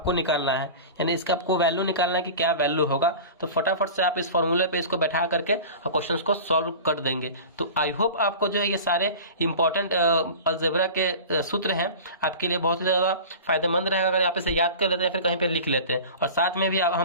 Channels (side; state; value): both; inverted; correlation -0.35